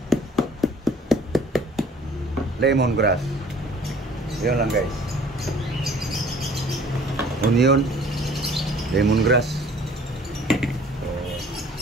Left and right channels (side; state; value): both; normal; correlation 0.53